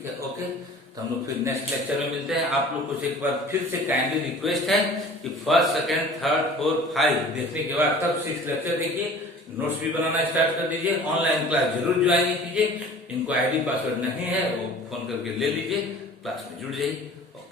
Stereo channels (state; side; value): normal; both; correlation 0.45